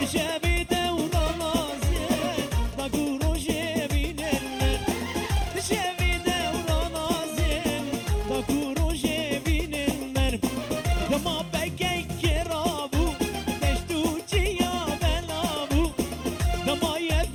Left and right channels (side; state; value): both; identical; correlation 1.00